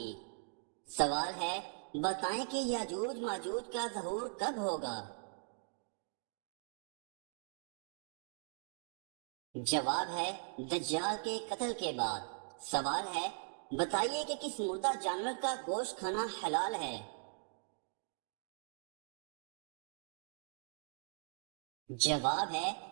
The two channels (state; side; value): silent; left; digital silence